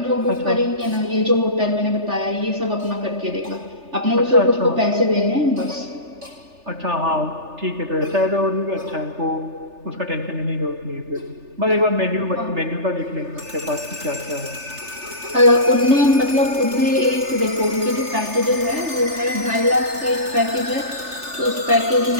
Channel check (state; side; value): late; left; 3.3 ms